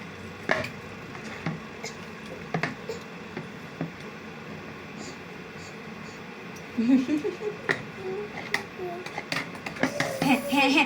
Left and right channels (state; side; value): identical; both; correlation 1.00